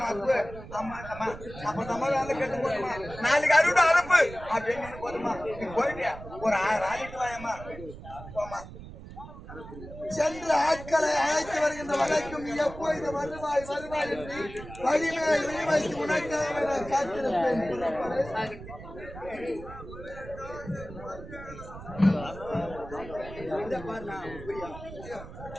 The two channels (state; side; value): noise; right; rumble, 14 dB below the sound